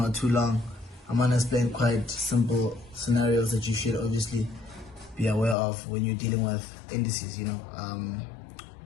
too long. I'm gonna explain quite simple scenarios that you should obviously be aware of when you're dealing with indices.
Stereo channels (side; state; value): right; drops out; at 5.6 s